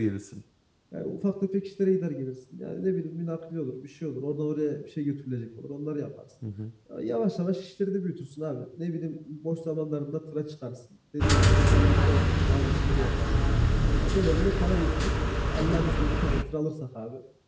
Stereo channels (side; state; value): both; identical; correlation 1.00